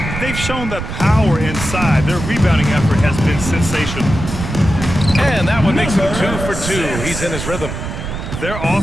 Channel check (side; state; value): right; noise; rumble, 6 dB below the sound